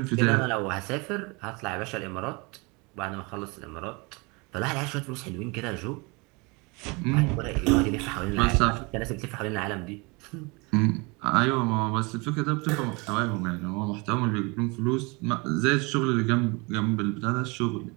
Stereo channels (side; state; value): left; quieter; 28.1 dB